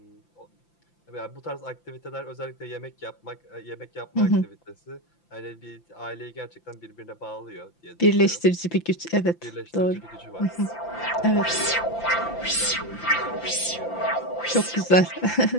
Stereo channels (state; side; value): late; right; 5.9 ms